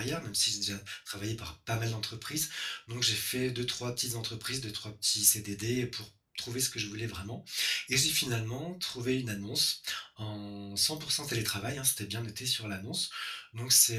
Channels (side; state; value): both; identical; correlation 1.00